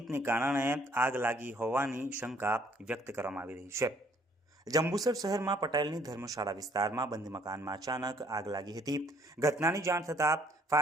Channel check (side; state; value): both; normal; correlation 0.62